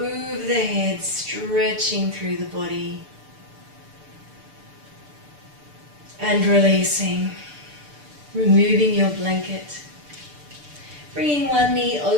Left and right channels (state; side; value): late; left; 6.8 ms